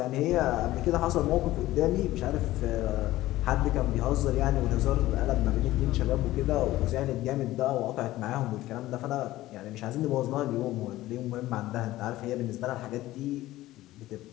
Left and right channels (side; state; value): right; quieter; 16.2 dB